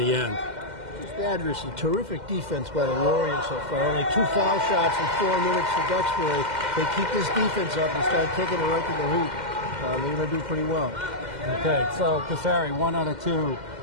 end. Adversely, terrific defense by the Warriors so far. Only 2 foul shots in 4 minutes for Duxbury. They keep this defense up and start taking it right to the hoop. They're going to do pretty well. Okay, so Casari, 1 out of 2.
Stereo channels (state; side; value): late; left; 2.1 ms